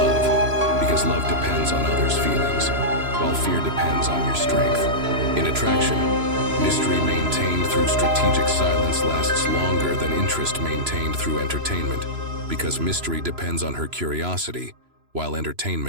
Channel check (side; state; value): left; late; 3.0 ms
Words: because love depends on others' feelings, while fear depends on your strength. In attraction, mystery maintained through strategic silence lasts longer than interest maintained through entertainment, because mystery depends on her curiosity, while